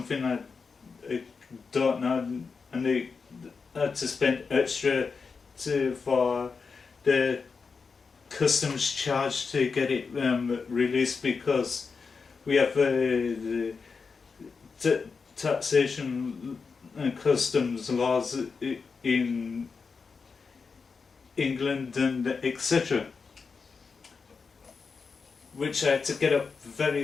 I don't know, and they had to spend extra for the customs charge to get it released, because we have the taxation and customs laws in England and etc. Which I had to get up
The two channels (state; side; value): quieter; right; 5.1 dB